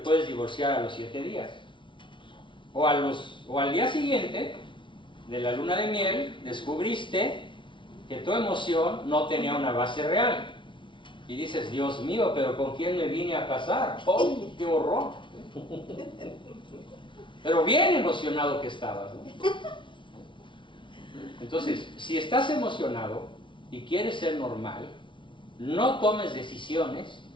divorciar a los 7 días. O al día siguiente de la luna de miel, descubriste que tu emoción no tenía una base real. Y dices, Dios mío, pero ¿con quién me vine a casar? ¡Oh, qué horror! Pero bien emocionado que estabas, ¿no? Entonces, si estás emocionado y quieres ser normal, no tomes decisiones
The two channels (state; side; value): late; right; 0.24 ms